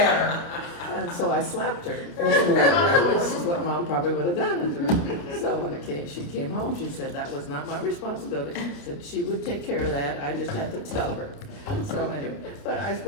And so I slapped her, which is what Mom probably would have done. So when she came home, she said that was not my responsibility. Said she would take care of that. I just had to tell her. So anyway, but I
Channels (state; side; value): late; right; 29 ms